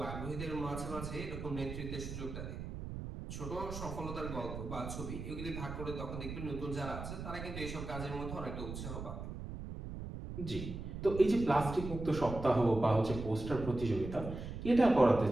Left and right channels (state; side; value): noise; right; rumble, 7 dB below the sound